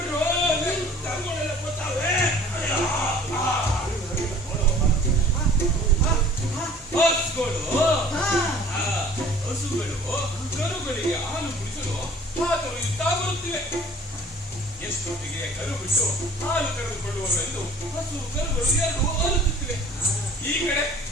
ಹಸುಗಳು ಕರುಗಳಿಗೆ ಹಾಲು ಕುಡಿಸಲು ಹಾತೊರೆಯುತ್ತಾ ಬರುತ್ತಿವೆ. ಎಷ್ಟೊತ್ತಿಗೆ ಕರು ಬಿಟ್ಟು ಹಾಲು ಕರೆದುಕೊಳ್ಳುವವೆಂದು ಹಸು ಕರುಗಳು ಎರಡು ಅರುತ್ತುತ್ತಿವೆ. ಈ ಕಡೆ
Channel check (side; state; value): both; normal; correlation 0.49